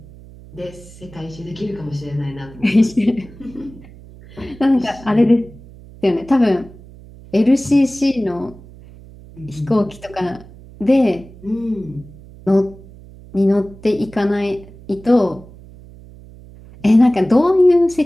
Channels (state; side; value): noise; right; hum, 20 dB below the sound